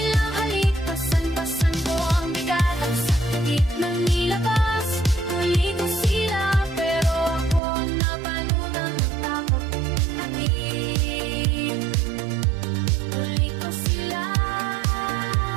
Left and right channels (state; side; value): drops out; left; at 7.6 s